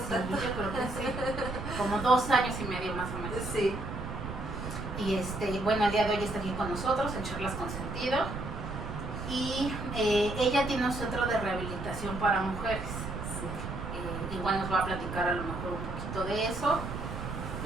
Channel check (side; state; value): right; noise; rumble, 7 dB below the sound